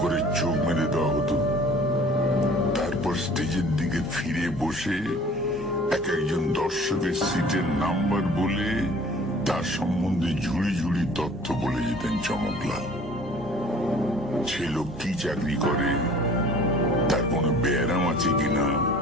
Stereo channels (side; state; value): both; normal; correlation 0.49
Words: করে চোখ মেরে দেওয়া হতো। তারপর স্টেজের দিকে ফিরে বসে এক একজন দর্শকের সিটের নাম্বার বলে তার সম্বন্ধে ঝুড়ি ঝুড়ি তথ্য বলে যেতেন চমকলাল। সে লোক কি চাকরি করে, তার কোনো ব্যারাম আছে কিনা,